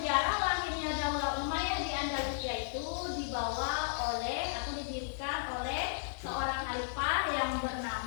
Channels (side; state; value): right; silent; 55 dB below the other